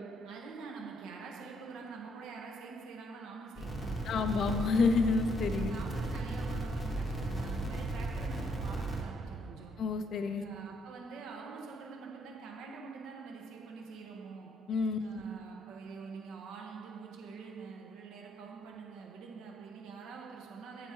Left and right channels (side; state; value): both; normal; correlation 0.72